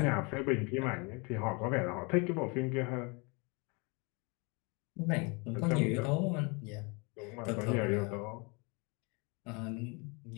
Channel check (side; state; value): right; quieter; 30.5 dB